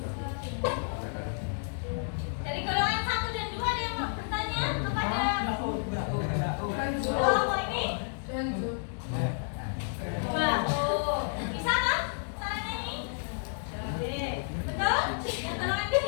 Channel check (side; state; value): right; silent; digital silence